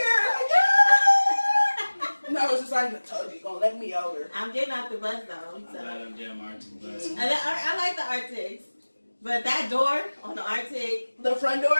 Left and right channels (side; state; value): both; inverted; correlation -1.00